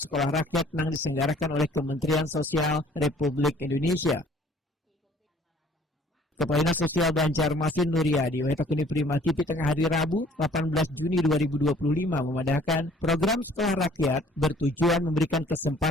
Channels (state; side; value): normal; both; correlation 0.56